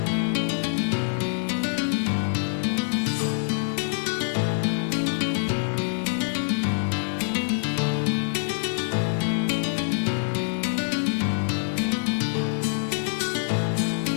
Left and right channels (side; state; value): right; silent; digital silence